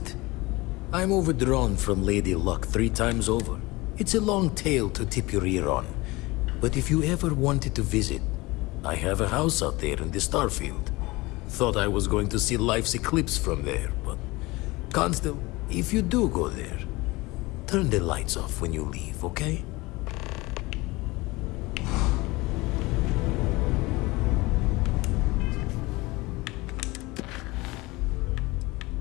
I'm overdrawn from Lady Luck 3 times over. It's a long tale to tip your ear on. But if you ever wanted to visit, I have a house out there in the Starfield. Thought I was going to see life's eclipse from there, but... Constant, if you do go there, turn the lights off when you leave, okay?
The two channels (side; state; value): right; quieter; 22.1 dB